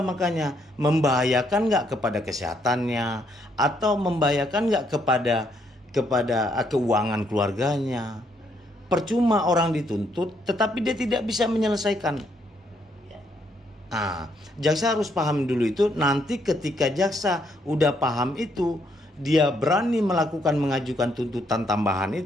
makanya membahayakan nggak kepada kesehatannya atau membahayakan nggak kepada keuangan keluarganya. Percuma orang dituntut tetapi dia tidak bisa menyelesaikan. Nah, jaksa harus paham dulu itu. Nanti ketika jaksa udah paham itu, dia berani mengajukan tuntutan tambahan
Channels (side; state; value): both; normal; correlation 0.72